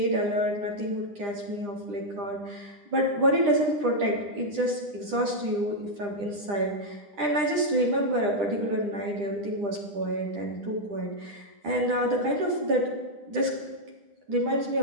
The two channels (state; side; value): late; left; 9.9 ms